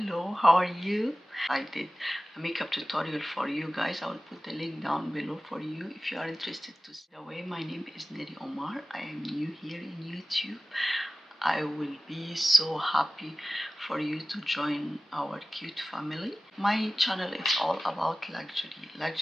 how are you? I did a makeup tutorial for you guys. I will put the link down below for you if you are interested to see. Away, my name is Neri Omar. I am new here in YouTube. I will be so happy for you to join our cute family. My channel is all about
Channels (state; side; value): normal; both; correlation 0.96